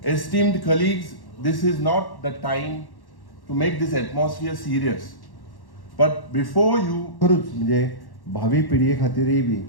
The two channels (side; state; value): right; late; 1.1 ms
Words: Esteemed colleagues, this is not the time to make this atmosphere serious. But before you... खरूच म्हणजे भावी पिढये खातीरय बी